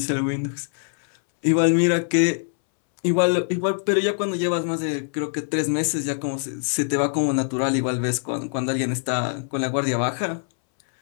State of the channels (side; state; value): right; silent; 63 dB below the other